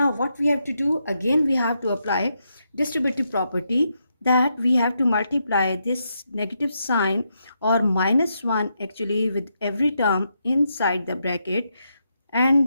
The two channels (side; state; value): both; inverted; correlation -0.82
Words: what we have to do, again we have to apply distributive property, that we have to multiply this negative sign or minus 1 actually with every term inside the bracket, and